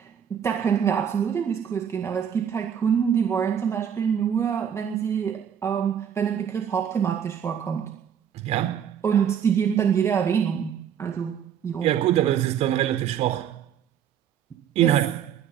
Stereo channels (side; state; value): left; quieter; 8.6 dB